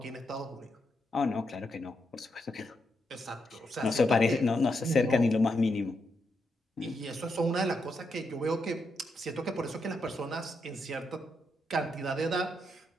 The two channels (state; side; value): normal; both; correlation 0.81